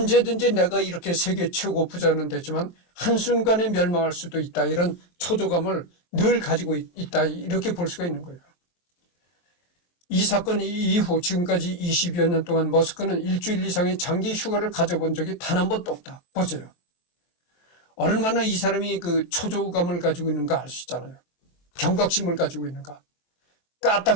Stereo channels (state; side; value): late; right; 23 ms